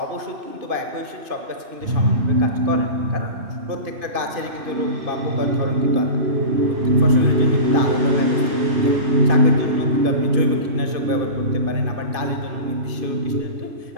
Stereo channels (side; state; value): left; late; 2.5 ms